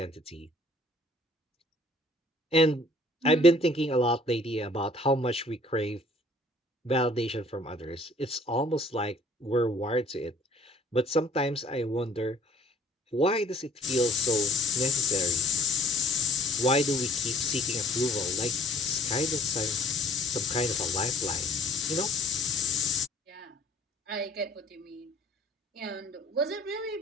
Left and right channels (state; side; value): normal; both; correlation 0.57